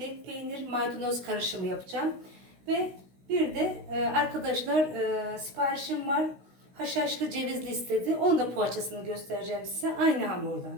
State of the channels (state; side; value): late; left; 16 ms